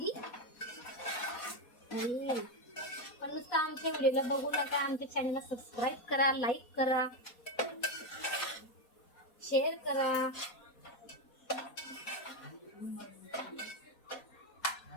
पण नुसतं आमच्या व्हिडिओला बघू नका. आमच्या चॅनलला सबस्क्राईब करा, लाईक करा, शेअर करा.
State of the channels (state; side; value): late; right; 4.2 ms